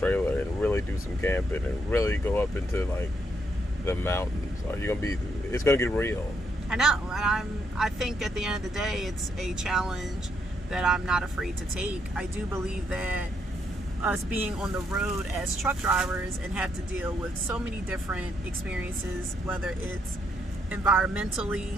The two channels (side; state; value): both; normal; correlation 0.76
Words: and really do some camping and really go up into like the mountains? Are you going to be? It's going to get real. I know, and I think at the end of the day, it's a challenge that I'm not afraid to take. I do believe that us being on the road as truck drivers and have to deal with so many different experiences, whether it's